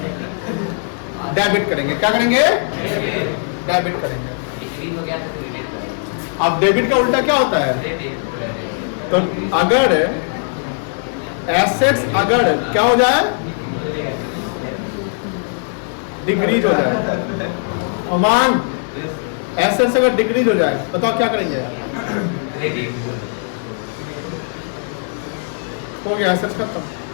डेबिट करेंगे। क्या करेंगे? डेबिट करेंगे। अब डेबिट का उल्टा क्या होता है? तो अगर एसेट्स अगर क्या हो जाए, डिक्रीज हो जाए, अमाउंट एसेट्स अगर डिक्रीज हो जाए, बताओ क्या करेंगे? हो गया एसेट्स खत्म।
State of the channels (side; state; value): right; silent; 66 dB below the other